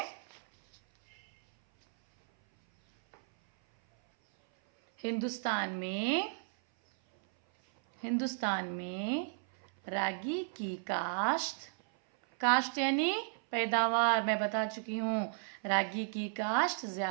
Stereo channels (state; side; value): silent; left; 55 dB below the other